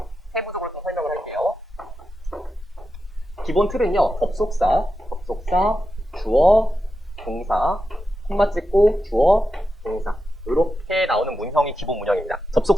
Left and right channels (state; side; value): normal; both; correlation 0.89